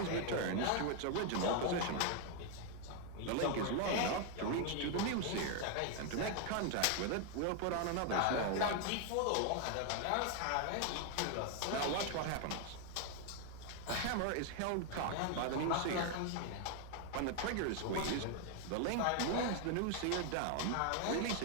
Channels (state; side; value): different; both; correlation 0.00